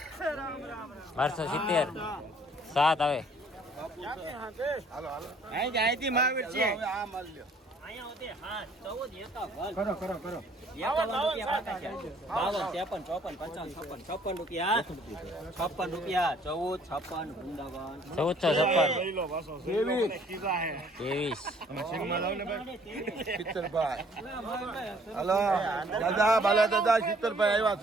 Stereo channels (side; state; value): both; normal; correlation 0.60